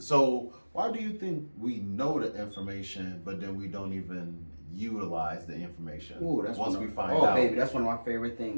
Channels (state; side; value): inverted; both; correlation -1.00